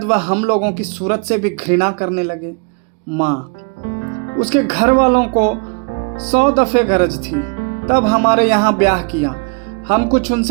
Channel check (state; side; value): quieter; left; 34.1 dB